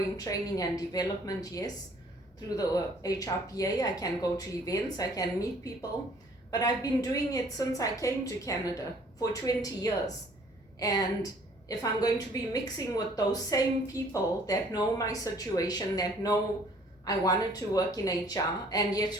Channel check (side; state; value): both; normal; correlation 0.57